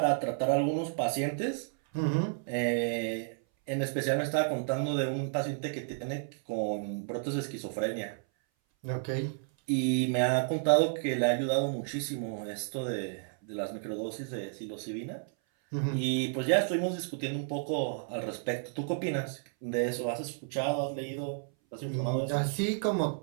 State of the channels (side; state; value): left; silent; 57 dB below the other